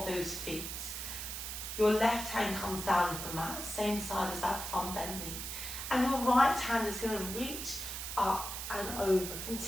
those feet. Your left hand comes down to the mat, same side as that front bent knee. And your right hand is going to reach up and over,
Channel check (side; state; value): right; noise; hiss, 6 dB below the sound